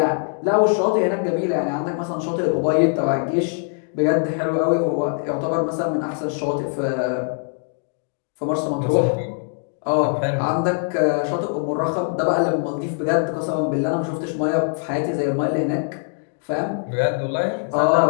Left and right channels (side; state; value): right; silent; 64 dB below the other